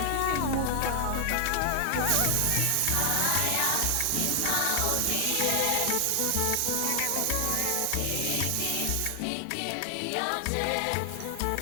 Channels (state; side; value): different; both; correlation 0.00